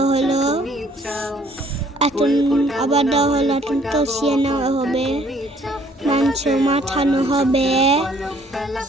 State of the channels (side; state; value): both; normal; correlation 0.61